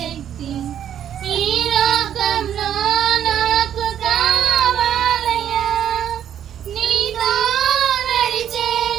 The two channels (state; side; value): quieter; left; 9.9 dB